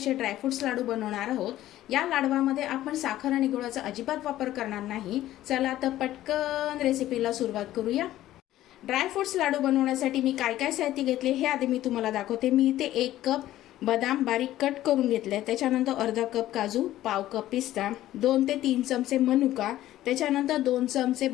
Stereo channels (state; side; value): quieter; right; 14.1 dB